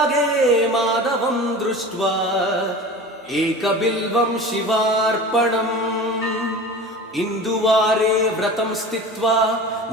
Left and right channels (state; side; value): normal; both; correlation 0.35